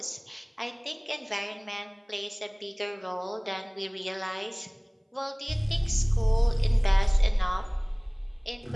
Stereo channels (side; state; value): both; identical; correlation 1.00